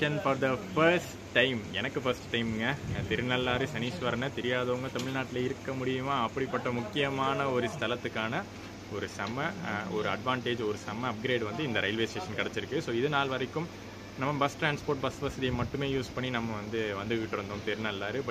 for the first time. எனக்கு ஃபர்ஸ்ட் டைமுங்க. திருநள்ளாறு சனீஸ்வரனை தெரியாதவங்க தமிழ்நாட்டில் இருக்க முடியுமா? அப்படிப்பட்ட முக்கியமான ஒரு ஸ்தலத்துக்கான ஒரு செம்ம ஒரு அட்வான்டேஜ், ஒரு செம்ம அப்கிரேட் வந்து இந்த ரயில்வே ஸ்டேஷன் கிடச்சிருக்கு. ஸோ இது நாள் வரைக்கும் நம்ம பஸ் டிரான்ஸ்போர்ட், பஸ் வசதியை மட்டுமே யூஸ் பண்ணி நம்ம வந்துகிட்டு இருந்தோம் திருநள்ளாறு.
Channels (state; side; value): identical; both; correlation 1.00